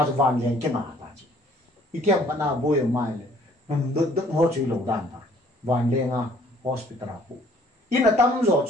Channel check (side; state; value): both; normal; correlation 0.58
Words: van len ke na ta chi i tiam pa na bo yo mai le nam dut ho chu lo dan ta van le nga hospital pu in a tam zo